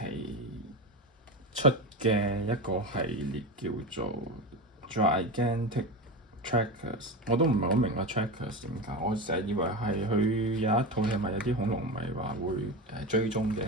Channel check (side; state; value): both; normal; correlation 0.22